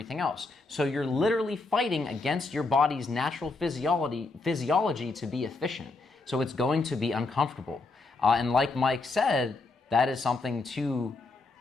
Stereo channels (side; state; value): right; quieter; 3.6 dB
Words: else. So you're literally fighting against your body's natural physiology to be efficient. So it's going to be uncomfortable. And like Mike said, that is something to